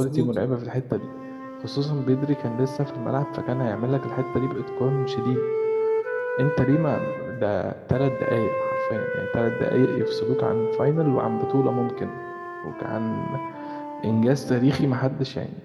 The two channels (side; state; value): both; identical; correlation 1.00